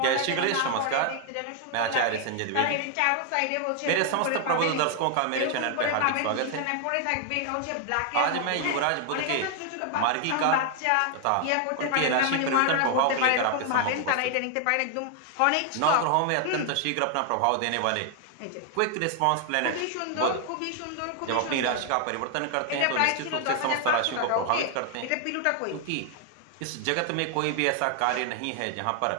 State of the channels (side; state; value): both; different; correlation 0.00